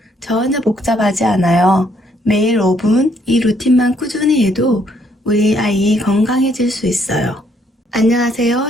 전혀 복잡하지 않아요. 매일 5분 이 루틴만 꾸준히 해도 우리 아이 건강해질 수 있어요.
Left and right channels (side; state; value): both; normal; correlation 0.69